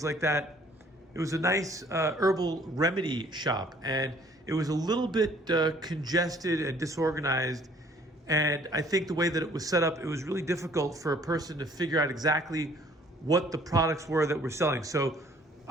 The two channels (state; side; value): normal; both; correlation 0.58